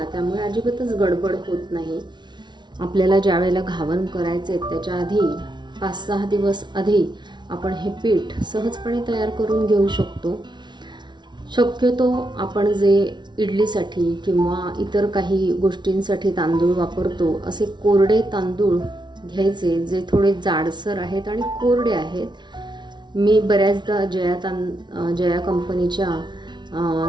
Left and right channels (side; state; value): left; late; 0.21 ms